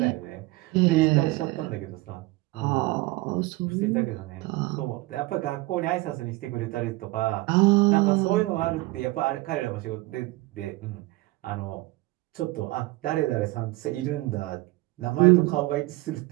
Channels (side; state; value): left; quieter; 20.7 dB